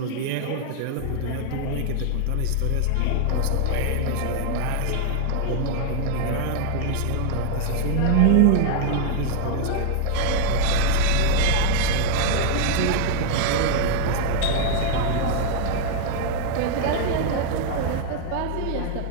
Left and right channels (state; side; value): different; both; correlation 0.00